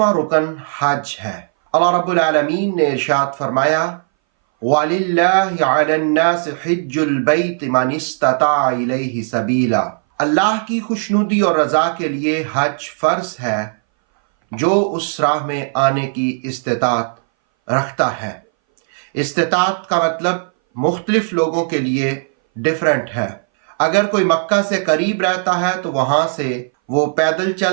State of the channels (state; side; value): silent; left; 62 dB below the other